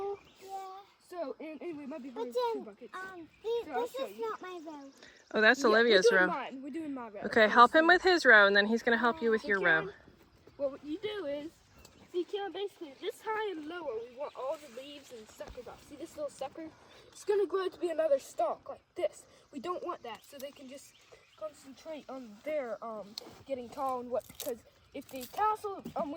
Yeah. So, and anyway, it might be hard But with 2 then, buckets. this I'll show is you. not my row. Oh, that's Olivia's we're doing row. Mine. We're doing my row. Okay, help him with his row, and then he's going to help you with your row. Well, what you do is, see, Caroline, basically, this high and lower, we want all the leaves and suckers off. See this little sucker? It's going to grow to be another stalk like this. We don't want that, so they can just concentrate on their getting tall and what, because if they tassel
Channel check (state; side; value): identical; both; correlation 1.00